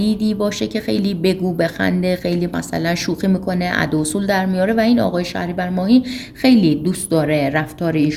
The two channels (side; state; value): both; identical; correlation 1.00